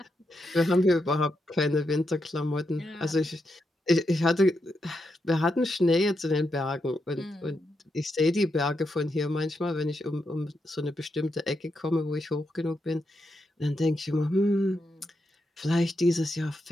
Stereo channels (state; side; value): normal; both; correlation 0.84